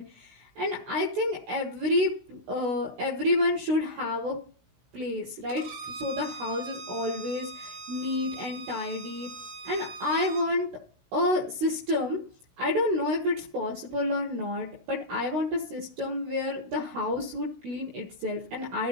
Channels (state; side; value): late; left; 16 ms